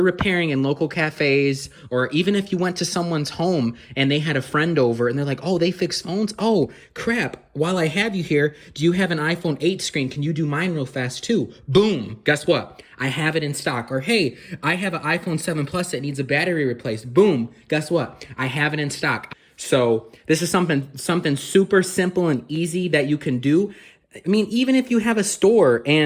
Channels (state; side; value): identical; both; correlation 1.00